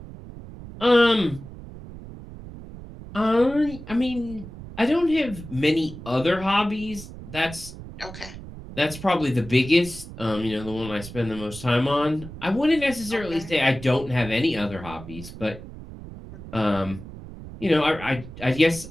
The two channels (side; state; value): right; noise; rumble, 14 dB below the sound